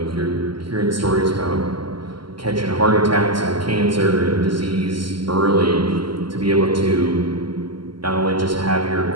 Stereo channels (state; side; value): late; left; 0.73 ms